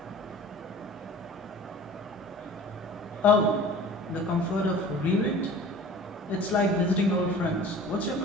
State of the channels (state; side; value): normal; both; correlation 0.43